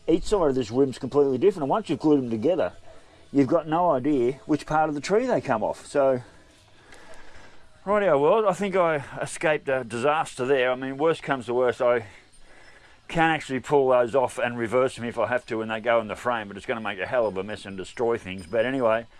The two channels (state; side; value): identical; both; correlation 1.00